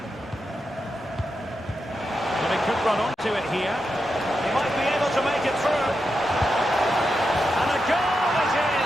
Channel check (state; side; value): normal; both; correlation 0.87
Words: But he could run onto it here. He might be able to make it through. And a goal it